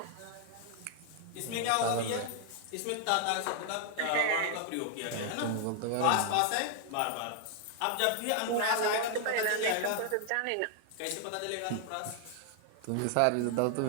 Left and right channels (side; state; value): both; different; correlation 0.00